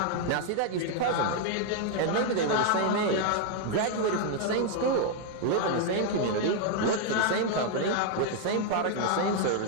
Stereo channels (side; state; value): both; different; correlation 0.00